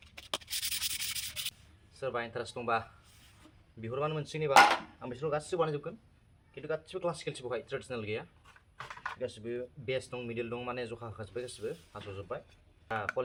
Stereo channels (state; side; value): identical; both; correlation 1.00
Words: सोरबा इन्टारेस्ट दंबा बिहरबानो मोनसिगोन। एबा आं बिसोरखौ गासिबो बानायजोबगोन, खिन्थु गासिबो क्लासिकेलसो बहाय ट्रेडिसनेल गैया। गासिबो बेस दं, मिडिल दं, माने जखा होखाजोब्बाय, गासिबो हास'जोब्बाय।